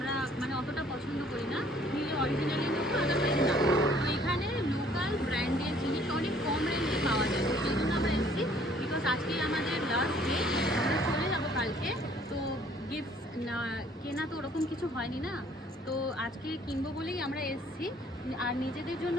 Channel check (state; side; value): normal; both; correlation 0.59